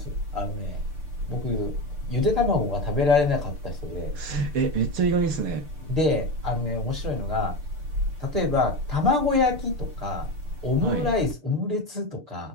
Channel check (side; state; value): left; late; 6.7 ms